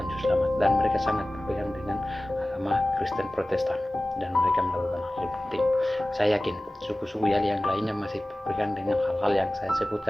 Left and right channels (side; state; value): both; normal; correlation 0.97